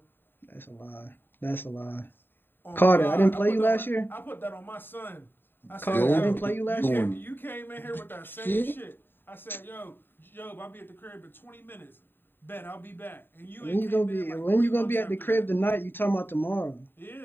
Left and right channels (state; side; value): late; right; 0.096 ms